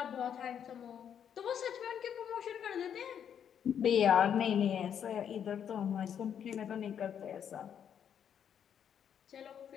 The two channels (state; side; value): quieter; right; 8.6 dB